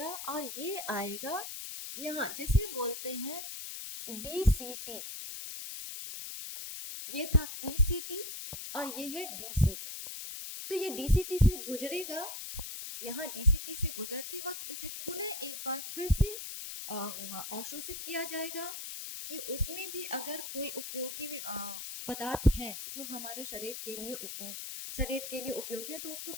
और ये आएगा यहाँ, जिसे बोलते हैं डीसीटी। ये था पीसीटी और ये है डीसीटी। तो ये डीसीटी से गुजरेगा, यहाँ डीसीटी से गुजरते वक्त इसे पुनः एक बार फिर से अवशोषित किया जाएगा कि उसमें भी अगर कोई उपयोगी पदार्थ है जो हमारे शरीर के लिए उपयोगी है तो उसको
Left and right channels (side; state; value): left; noise; hiss, 7 dB below the sound